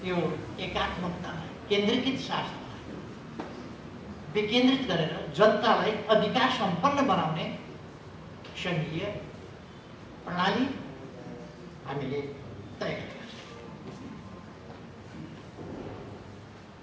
यो एकात्मकतालाई, केन्द्रीकृत शासनलाई विकेन्द्रित गरेर जनतालाई अधिकार सम्पन्न बनाउने सङ्घीय प्रणाली हामीले तय गरेका छौँ।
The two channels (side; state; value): both; identical; correlation 1.00